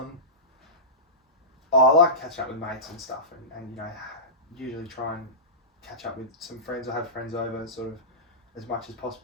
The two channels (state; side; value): normal; both; correlation -0.18